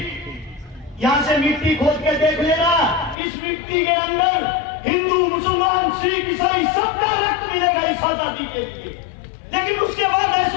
यहाँ से मिट्टी खोद के देख लेना, इस मिट्टी के अंदर हिंदू मुसलमान सिख ईसाई सबका रक्त मिलेगा इस आजादी के लिए। लेकिन उसके बाद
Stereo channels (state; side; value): drops out; right; at 3.2 s